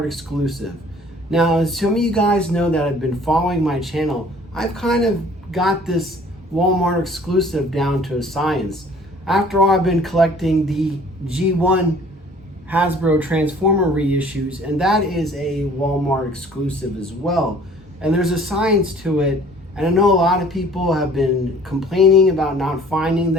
exclusive. Now, as some of you guys know that have been following my channel, I've kind of got this Walmart exclusive down to a science. After all, I've been collecting the G1 Hasbro Transformer reissues, and that is a Walmart exclusive as well. And there's a science to it, and I know a lot of people have been complaining about not finding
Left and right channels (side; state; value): both; normal; correlation 0.52